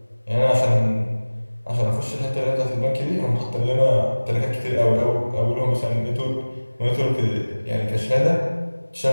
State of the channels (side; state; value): both; inverted; correlation -1.00